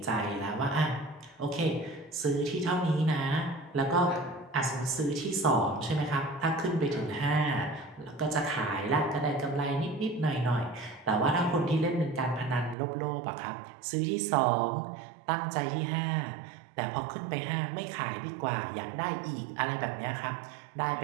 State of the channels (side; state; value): left; drops out; at 12.8 s